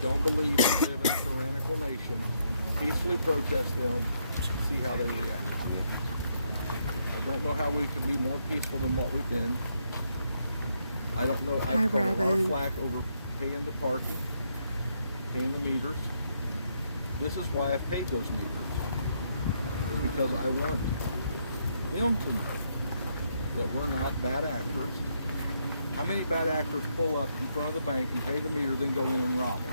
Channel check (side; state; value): both; inverted; correlation -0.76